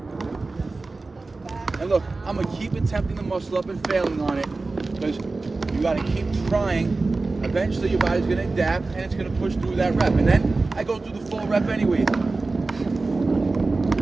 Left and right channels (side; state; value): left; quieter; 3.6 dB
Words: And look, I'm going to keep attempting the muscle up and failing on it because you got to keep trying. Eventually your body's going to adapt and it's going to push through that rep. And then I go through the full rep anyway.